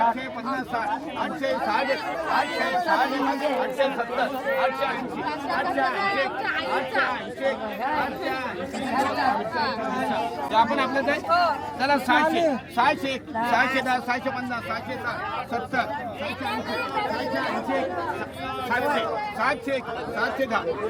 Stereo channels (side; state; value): both; identical; correlation 1.00